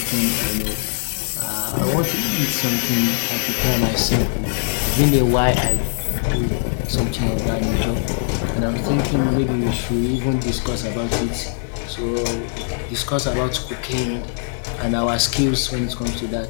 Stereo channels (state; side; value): silent; right; digital silence